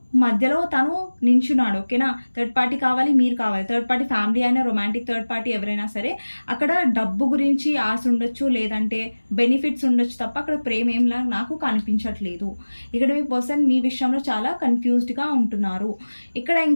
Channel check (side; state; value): both; inverted; correlation -1.00